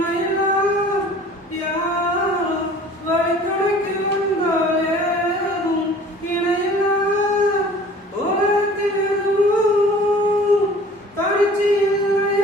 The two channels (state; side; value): normal; both; correlation 0.48